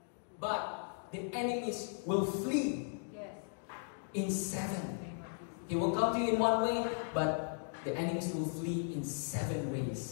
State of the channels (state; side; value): silent; right; digital silence